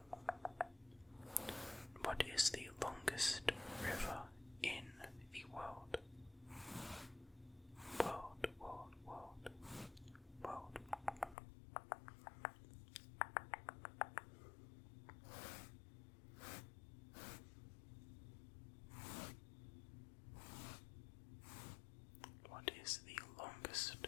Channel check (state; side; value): drops out; right; at 11.4 s